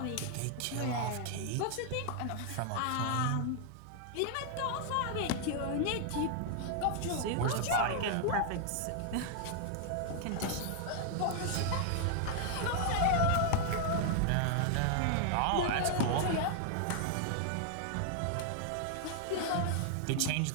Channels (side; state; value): both; different; correlation -0.01